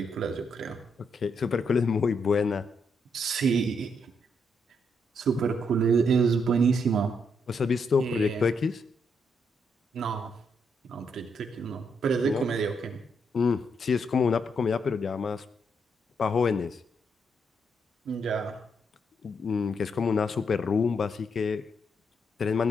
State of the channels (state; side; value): normal; both; correlation 0.77